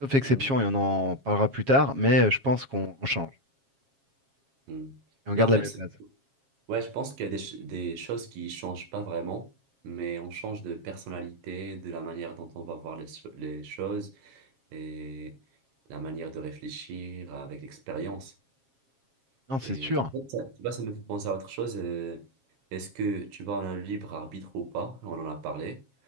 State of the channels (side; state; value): left; late; 7.4 ms